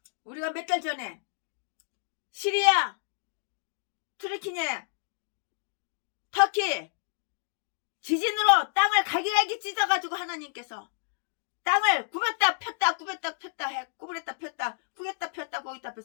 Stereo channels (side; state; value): right; silent; digital silence